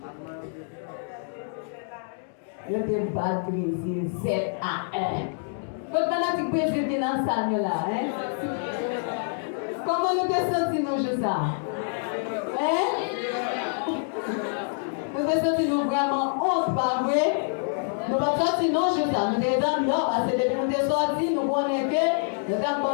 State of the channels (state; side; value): silent; right; digital silence